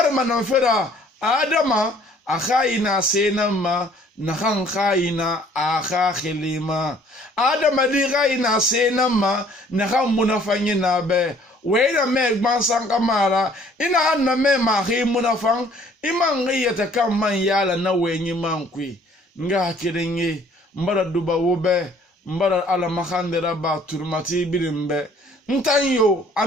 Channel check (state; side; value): normal; both; correlation 0.58